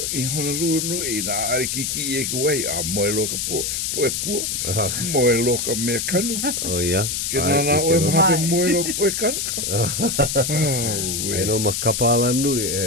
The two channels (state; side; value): noise; left; hiss, 1 dB below the sound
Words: I Honolulu no i na ari kiki e ko wai. A moe loka po e pua. Moe loka mea kanu. O ia. Ke nana o e mahape moe loka po e kanu. E no makapala nui